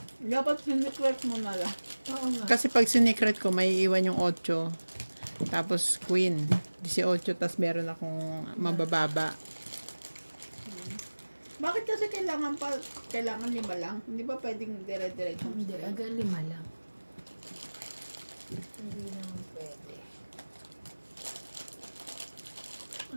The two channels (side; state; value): both; inverted; correlation -1.00